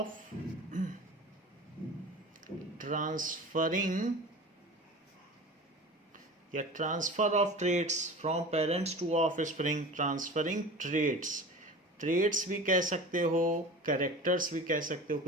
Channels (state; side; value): normal; both; correlation 0.36